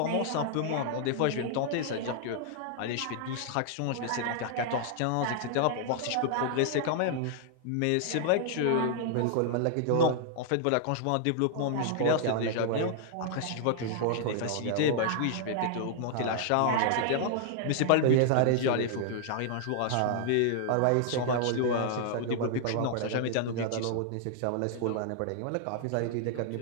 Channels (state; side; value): different; both; correlation -0.01